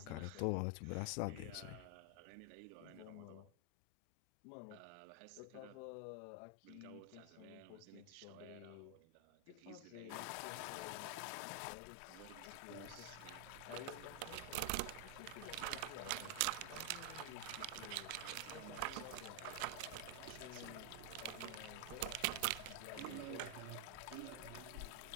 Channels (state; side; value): different; both; correlation 0.00